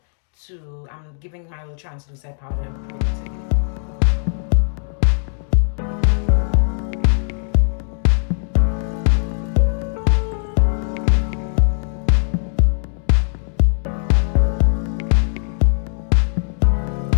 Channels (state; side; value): silent; right; digital silence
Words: I'm giving my little translucent powder pretty.